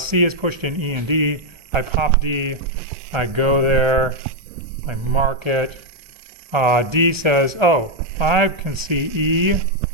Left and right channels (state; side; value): late; left; 1.3 ms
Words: is pushed in E and D. I pop D. I go there. I mark it. D says, oh, I can see E,